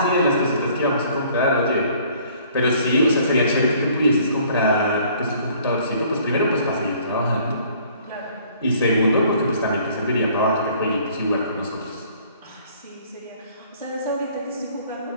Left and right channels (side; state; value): both; inverted; correlation -0.57